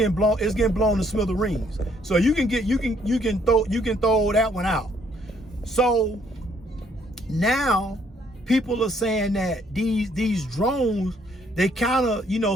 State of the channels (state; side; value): normal; both; correlation 0.67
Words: blown to smithereens. So you can throw that one out. So now people are saying that these drones, they kind of,